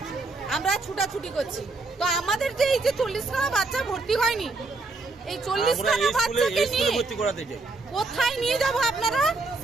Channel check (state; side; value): quieter; left; 3.4 dB